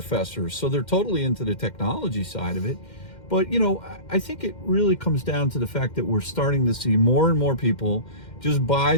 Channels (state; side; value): late; right; 2.1 ms